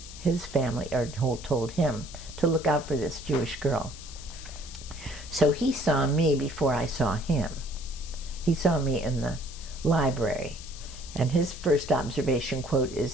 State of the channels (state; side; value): noise; left; hiss, 15 dB below the sound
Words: his family, or told him, to look out for this Jewish girl. So he saw me before I saw him. He saw me in the library. And his first observation quote